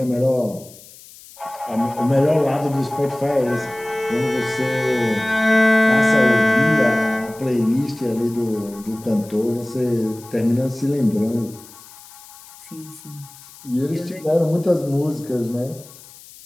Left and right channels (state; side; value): noise; left; hiss, 20 dB below the sound